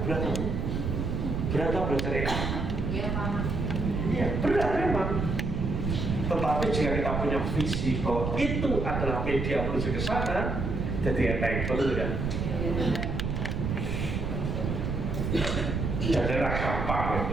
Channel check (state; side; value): noise; right; rumble, 1 dB below the sound